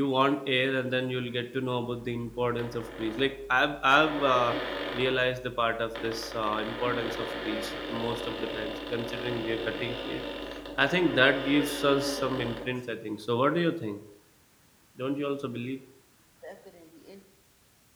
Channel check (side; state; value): both; identical; correlation 1.00